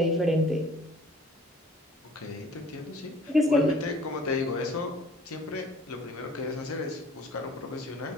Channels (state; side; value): normal; both; correlation 0.51